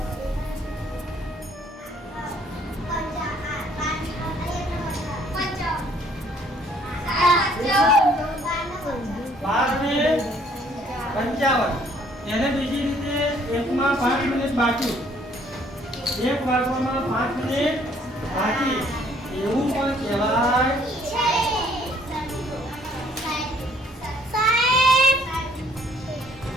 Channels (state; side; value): normal; both; correlation 0.62